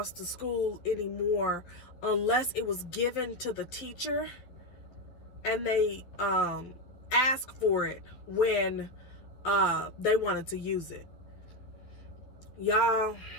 to school anymore unless it was given to the teacher and they asked for it when they wanted to use it. Y'all,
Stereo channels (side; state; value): right; late; 11 ms